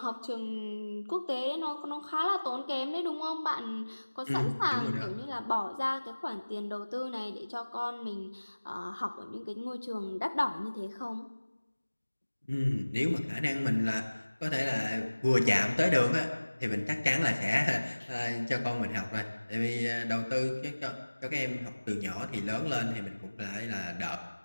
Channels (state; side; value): inverted; both; correlation -1.00